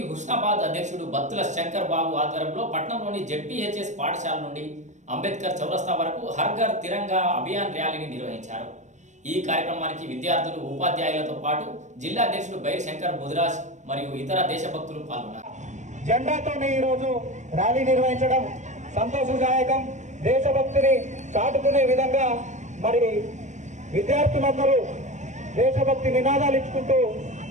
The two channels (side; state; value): left; late; 0.34 ms